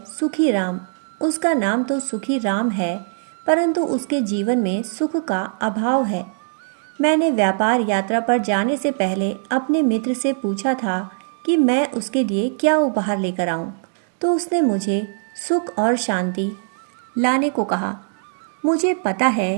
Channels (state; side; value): silent; left; digital silence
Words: सुखी राम। उसका नाम तो सुखी राम है, परंतु उसके जीवन में सुख का अभाव है। मैंने व्यापार यात्रा पर जाने से पहले अपने मित्र से पूछा था कि मैं उसके लिए क्या उपहार लेकर आऊं, तो उसने मुझे सुख और शांति लाने को कहा। मुझे पता